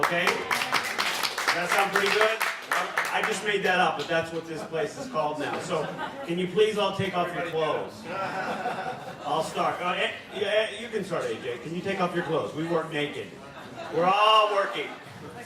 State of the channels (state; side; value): identical; both; correlation 1.00